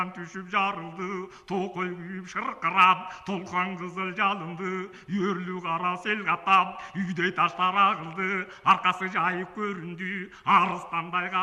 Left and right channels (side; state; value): both; identical; correlation 1.00